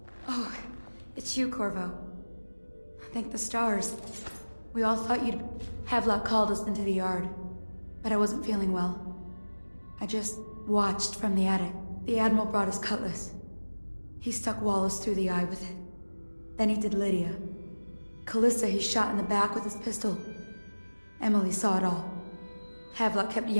Oh, it's you, Corvo. Thank the stars. We all thought you'd... Havelock called us into the yard, but I wasn't feeling well. I just watched from the attic. The Admiral brought his cutlass. He stuck Wallace through the eye with it. Then he did Lydia. Callista he shot in the back with his pistol. Emily saw it all. Havelock kept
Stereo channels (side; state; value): both; inverted; correlation -1.00